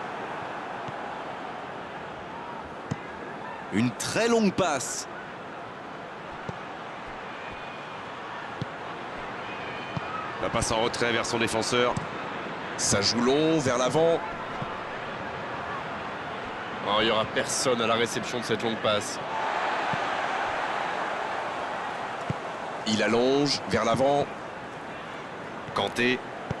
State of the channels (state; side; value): identical; both; correlation 1.00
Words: Une très longue passe. La passe en retrait vers son défenseur. Ça joue long vers l'avant. Oh, il n'y aura personne à la réception de cette longue passe. Il allonge vers l'avant. Kanté.